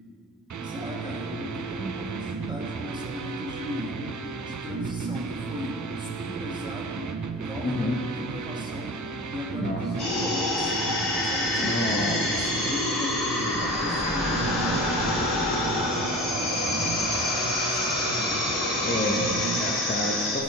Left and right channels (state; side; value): normal; both; correlation 0.35